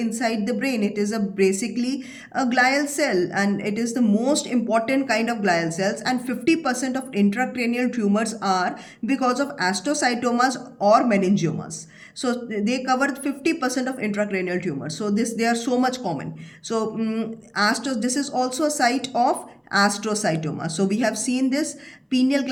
the brain. It is basically a glial cell, and it is the most important kind of glial cells, and 50% of intracranial tumors are because of astrocytomas or meningiomas. So they cover 50% of intracranial tumors. So they are so much common. So this is also a site of astrocytoma. So we have seen this pineal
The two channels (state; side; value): identical; both; correlation 1.00